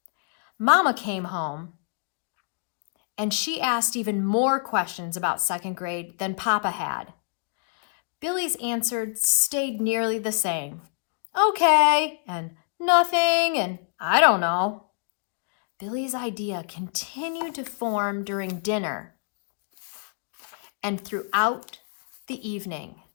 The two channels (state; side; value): silent; right; 60 dB below the other